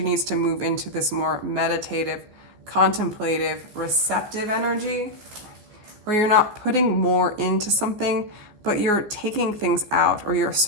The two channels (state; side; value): late; left; 14 ms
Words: to move into this more meditative, contemplative, receptive energy, where you're not putting more into something, but you're taking things out, or you're